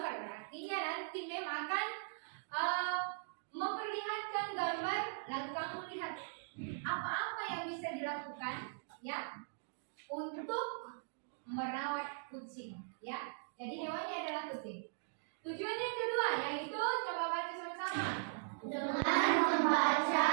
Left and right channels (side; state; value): left; silent; digital silence